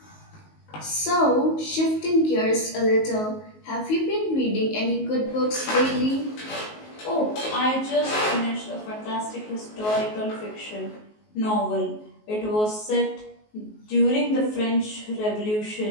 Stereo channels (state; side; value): late; right; 19 ms